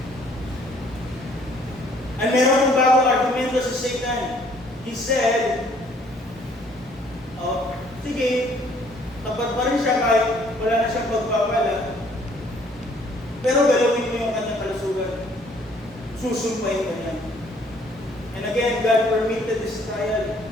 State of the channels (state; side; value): normal; both; correlation 0.61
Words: At meron ng bagong argumento sa Satan. He said, sige, tapat pa rin siya kahit wala na siyang pagpapala. Pero galawin mo yung kanyang kalusugan. Susumpahin ka niya. And again, God permitted this trial.